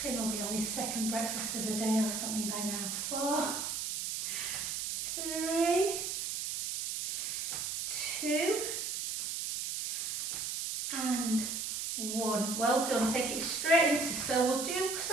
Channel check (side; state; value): right; noise; hiss, 2 dB below the sound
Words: Finn will be on his second breakfast of the day or something by now. 4. 3. 2. And 1. Well done. Take it straight into. So we'll do